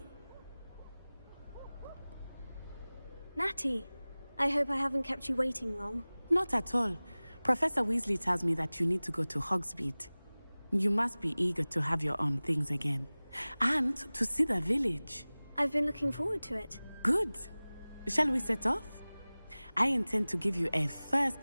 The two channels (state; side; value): inverted; both; correlation -0.99